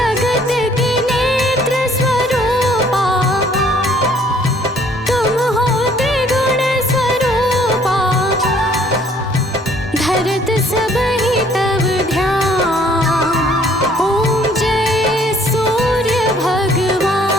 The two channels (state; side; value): normal; both; correlation 0.60